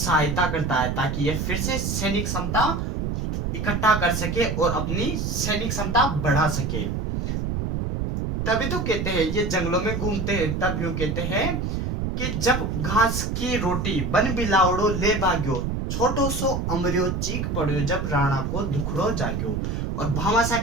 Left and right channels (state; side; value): noise; right; rumble, 1 dB below the sound